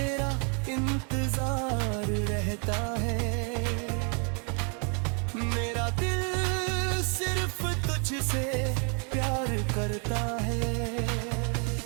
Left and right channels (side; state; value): left; quieter; 38.0 dB